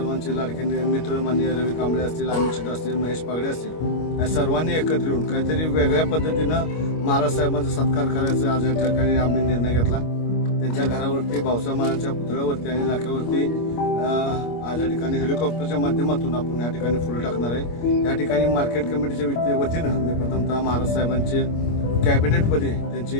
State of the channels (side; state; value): right; late; 25 ms